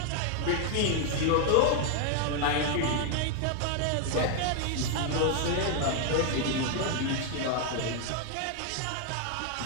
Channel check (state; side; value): different; both; correlation 0.00